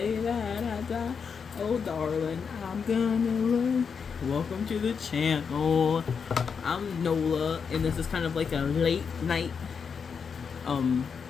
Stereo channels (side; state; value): right; quieter; 6.2 dB